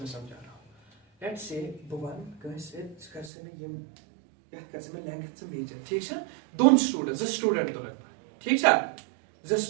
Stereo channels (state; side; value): drops out; left; at 3.3 s